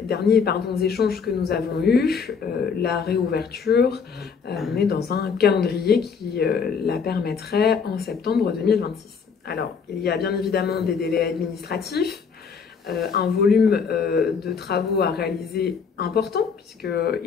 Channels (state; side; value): quieter; right; 5.9 dB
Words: échanges que nous avons eus, la réouverture, on est dans un calendrier qui la permettrait en septembre 2026. Alors, il y a bien évidemment des délais administratifs un volume de travaux à réaliser important,